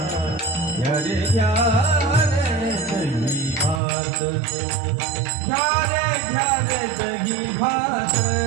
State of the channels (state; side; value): drops out; left; at 3.8 s